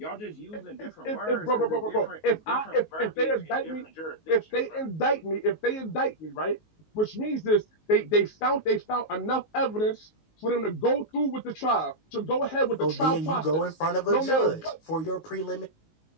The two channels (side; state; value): right; late; 19 ms